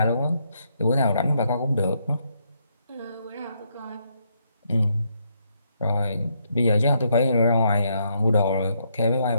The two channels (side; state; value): both; inverted; correlation -0.75